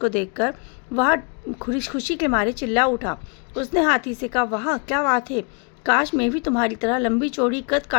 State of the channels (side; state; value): right; quieter; 35.7 dB